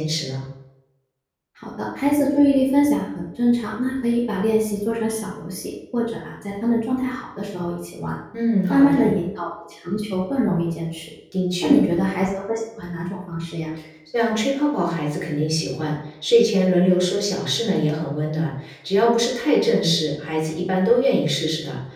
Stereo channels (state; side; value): identical; both; correlation 1.00